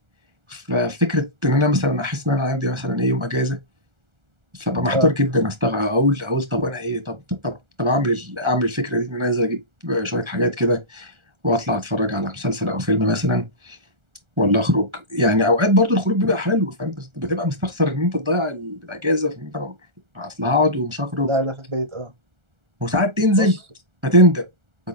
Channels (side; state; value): left; late; 1.4 ms